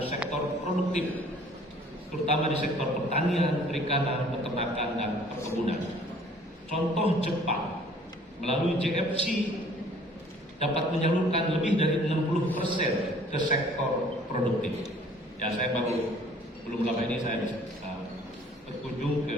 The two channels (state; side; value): normal; both; correlation 0.54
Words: sektor produktif, terutama di sektor pertanian, perikanan, peternakan, dan perkebunan. Contoh Jepang melalui JFC dapat menyalurkan lebih dari 60% ke sektor produktif. Ya, saya belum lama ini saya berkunjung